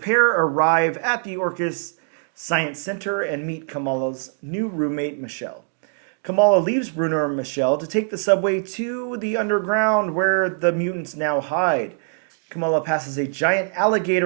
arrive at the Orcus Science Center and meet Kamala's new roommate, Michelle. Kamala leaves Bruno and Michelle to take the subway to the underground where the mutants now hide. Kamala passes a giant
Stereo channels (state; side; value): silent; left; digital silence